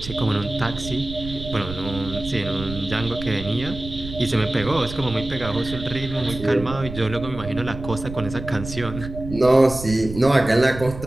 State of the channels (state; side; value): noise; right; rumble, 11 dB below the sound